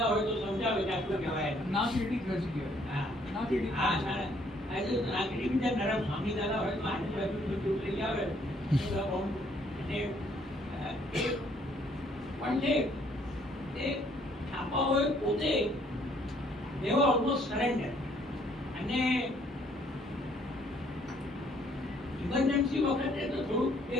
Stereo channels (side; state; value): both; normal; correlation 0.65